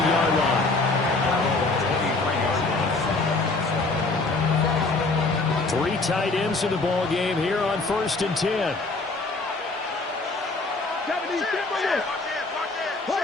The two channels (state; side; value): quieter; right; 3.4 dB